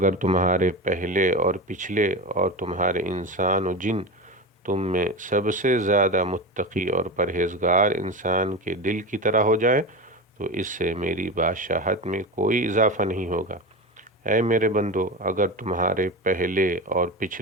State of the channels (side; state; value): both; normal; correlation 0.24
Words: تمہارے پہلے اور پچھلے اور تمہارے انسان و جن تم میں سب سے زیادہ متقی اور پرہیزگار انسان کے دل کی طرح ہو جائے تو اس سے میری بادشاہت میں کوئی اضافہ نہیں ہوگا۔ اے میرے بندو، اگر تمہارے پہلے اور